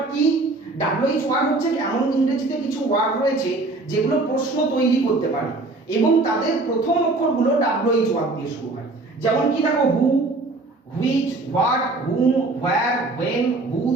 কি? ডাব্লিউএইচ ওয়ার্ড হচ্ছে এমন ইংরেজিতে কিছু ওয়ার্ড রয়েছে যেগুলো প্রশ্ন তৈরি করতে পারে এবং তাদের প্রথম অক্ষরগুলো ডাব্লিউএইচ ওয়ার্ড দিয়ে শুরু হয়। যেমন কি দেখো, who, which, what, whom, where, when,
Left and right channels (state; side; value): quieter; left; 3.2 dB